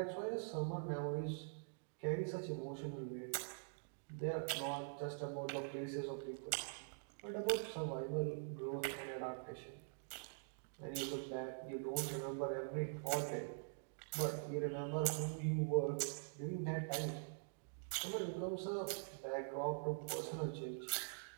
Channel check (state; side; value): silent; left; digital silence